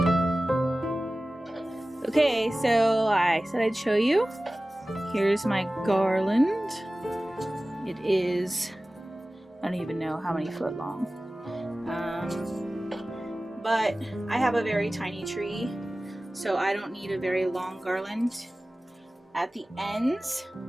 Okay, so I said I'd show you. Here's my garland. It is, I don't even know how many foot long. But I have a very tiny tree, so I don't need a very long garland. At the ends,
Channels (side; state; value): both; normal; correlation 0.97